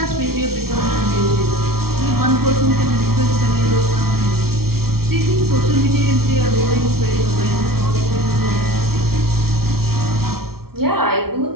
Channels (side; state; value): left; late; 0.94 ms